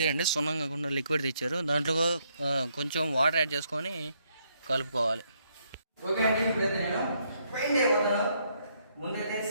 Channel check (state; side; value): inverted; both; correlation -0.73